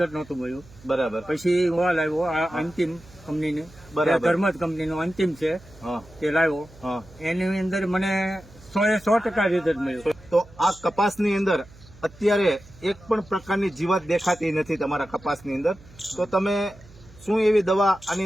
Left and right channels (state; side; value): noise; right; hum, 23 dB below the sound